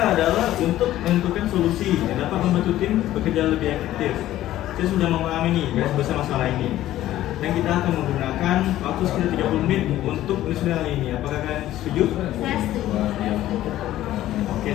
adalah untuk menentukan solusi yang dapat membantu tim bekerja lebih efektif. Saya sudah memahami nih garis besar masalah ini. Dan kita akan menggunakan waktu sekitar 30 menit untuk menyusun hal ini. Apakah kalian setuju? Saya setuju. Oke,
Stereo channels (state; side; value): quieter; right; 14.0 dB